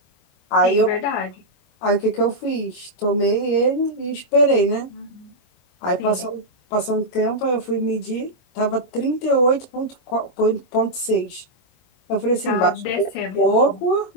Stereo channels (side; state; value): right; late; 24 ms